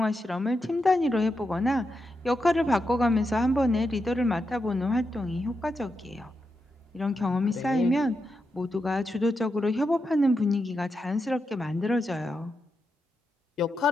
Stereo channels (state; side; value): normal; both; correlation 0.86